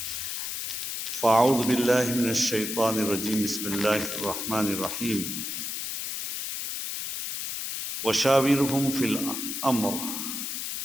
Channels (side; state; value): left; noise; hiss, 4 dB below the sound